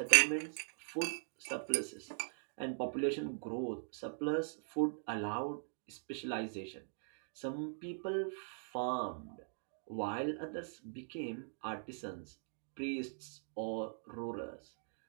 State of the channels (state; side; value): silent; left; digital silence